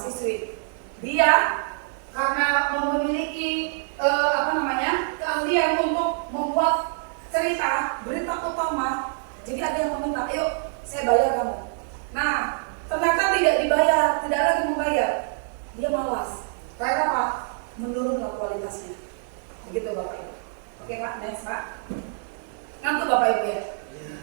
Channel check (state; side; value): silent; left; digital silence